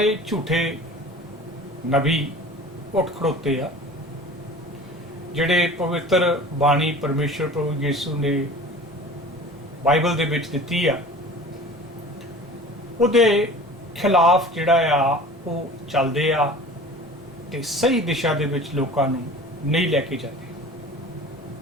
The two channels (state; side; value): normal; both; correlation 0.41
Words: ਝੂਠੇ ਨਬੀ ਉੱਠ ਖੜੋਤੇ ਆ ਜਿਹੜੇ ਪਵਿੱਤਰ ਬਾਣੀ ਪਰਮੇਸ਼ਰ ਪ੍ਰਭੂ ਯਿਸੂ ਨੇ ਬਾਈਬਲ ਦੇ ਵਿੱਚ ਦਿੱਤੀ ਆ ਉਹਦੇ ਖਿਲਾਫ ਜਿਹੜਾ ਆ ਉਹ ਚੱਲਦੇ ਆ ਤੇ ਸਹੀ ਦਿਸ਼ਾ ਦੇ ਵਿੱਚ ਲੋਕਾਂ ਨੂੰ ਨਹੀਂ ਲੈ ਕੇ ਜਾਂਦੇ।